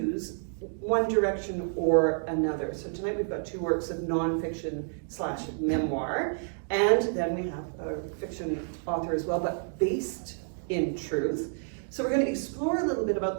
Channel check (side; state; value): left; silent; digital silence